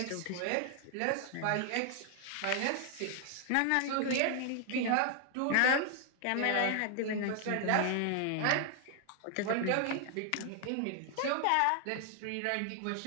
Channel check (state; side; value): different; both; correlation 0.00